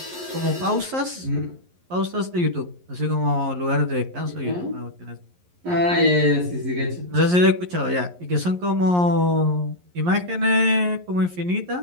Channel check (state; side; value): late; left; 11 ms